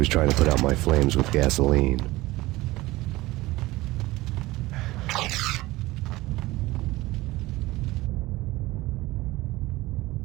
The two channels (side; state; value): left; quieter; 19.3 dB